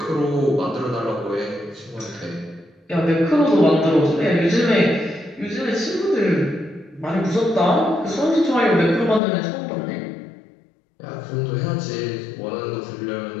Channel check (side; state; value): right; drops out; at 9.2 s